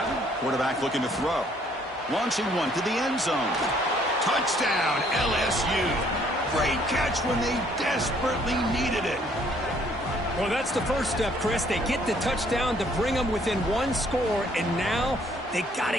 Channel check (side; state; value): both; normal; correlation 0.63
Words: Quarterback looking to throw. Launching one to the end zone. Touchdown, LSU. Great catch when they desperately needed it. Well, that's the first step, Chris. They get the touchdown to bring them within 1 score, and now they got